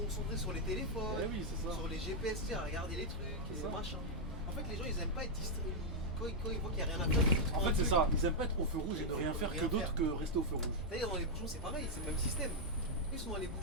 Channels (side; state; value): both; normal; correlation -0.03